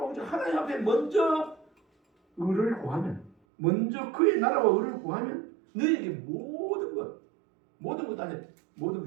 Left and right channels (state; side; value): drops out; left; at 3.3 s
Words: 하나님 앞에 먼저 의를 구하면, 먼저 그의 나라와 의를 구하면 너희에게 모든 것 안에 모든